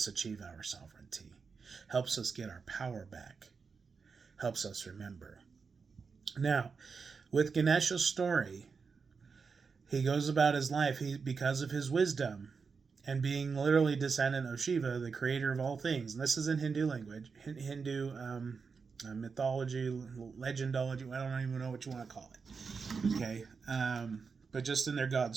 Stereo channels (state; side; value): quieter; left; 5.2 dB